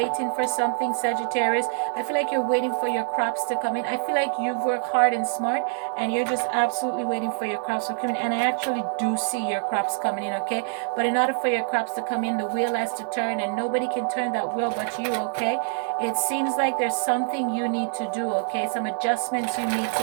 for something, Sagittarius. I feel like you're waiting for your crops to come in. I feel like you've worked hard and smart, and you're just absolutely waiting for your crops to come in. And I actually do see your crops coming in, okay? But in order for your crops to come in, the wheel has to turn, and nobody can turn that wheel but you, okay? It seems like there's something you need to do, okay? Some adjustments you need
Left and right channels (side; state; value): left; silent; digital silence